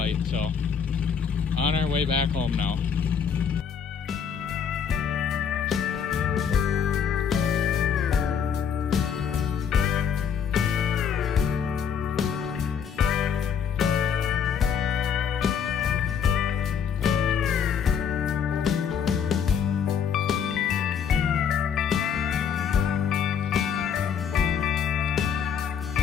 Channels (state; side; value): quieter; right; 7.4 dB